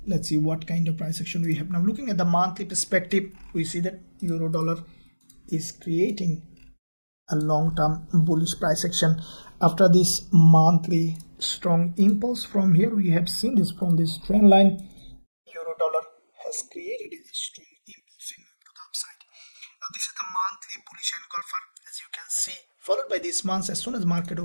Let's see what kind of price action we have. Now looking at the monthly perspective, we see that euro dollar is creating a long-term bullish price action after this monthly strong impulse. From here we have seen this from this trend line, euro dollar has created a strong impulse to the upside. Now this is the monthly bullish engulfer, as you can see, followed by this month. As soon as market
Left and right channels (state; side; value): inverted; both; correlation -1.00